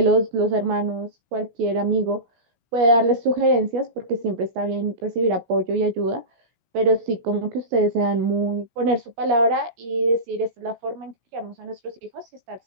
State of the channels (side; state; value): left; late; 17 ms